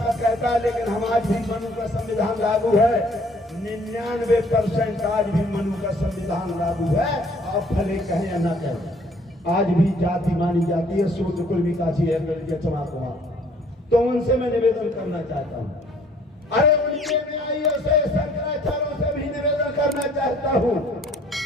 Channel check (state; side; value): normal; both; correlation 0.59